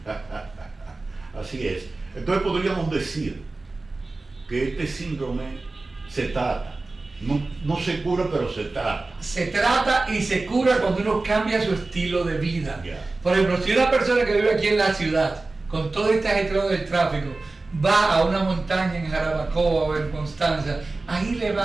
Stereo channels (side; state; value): left; quieter; 3.4 dB